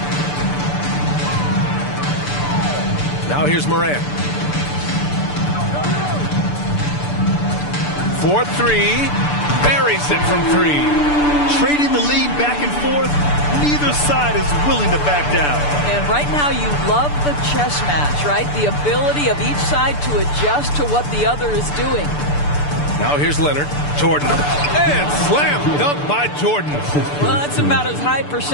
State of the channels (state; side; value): late; right; 6.8 ms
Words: Now here's Morant. 4-3. Buries it from 3. Trading the lead back and forth. Neither side is willing to back down. And right now you love the chess match, right? The ability of each side to adjust to what the other is doing. Now here's Leonard. Jordan. And slam dunk by Jordan. Well, that's about as high